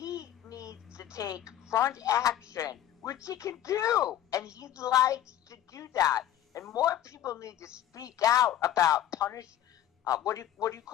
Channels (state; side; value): quieter; right; 11.6 dB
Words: needs to take front action, which he can do. And he likes to do that. And more people need to speak out about what do you